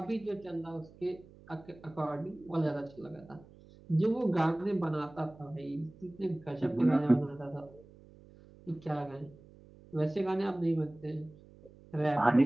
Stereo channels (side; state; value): right; noise; hum, 23 dB below the sound